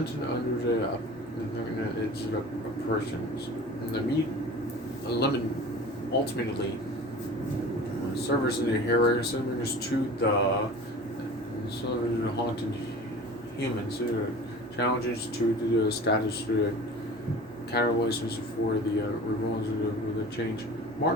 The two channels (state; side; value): normal; both; correlation 0.39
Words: it under the it's the persons. And the meat lemon ultimately serves in the hero serves to the haunted humans challenges to the status catalysis for the revolves of the change.